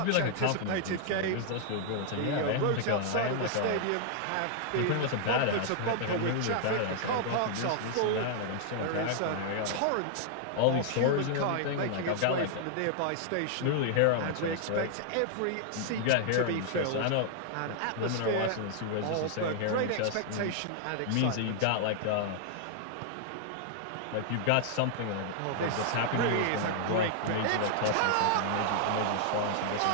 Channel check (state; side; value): different; both; correlation -0.01